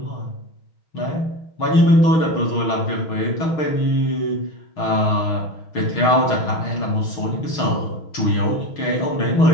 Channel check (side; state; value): right; late; 6.4 ms